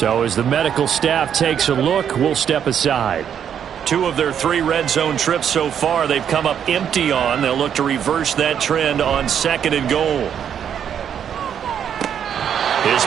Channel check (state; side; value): quieter; left; 8.6 dB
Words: as the medical staff takes a look, we'll step aside. 2 of their 3 red zone trips so far, they've come up empty on. They'll look to reverse that trend on second and goal. His